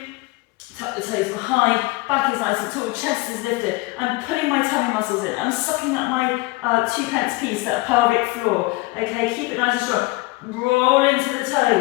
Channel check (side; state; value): right; quieter; 22.7 dB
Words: tuck the toes behind, back is nice and tall, chest is lifted. I'm pulling my tummy muscles in. I'm sucking up my 2-pence piece, that pelvic floor. Okay, keep it nice and strong. Roll into the